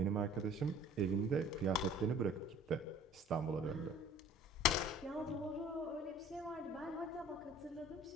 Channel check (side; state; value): both; normal; correlation 0.48